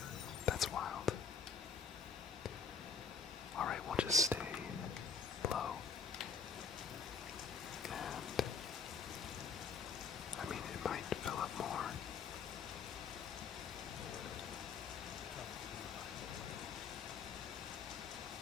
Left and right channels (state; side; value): quieter; right; 5.7 dB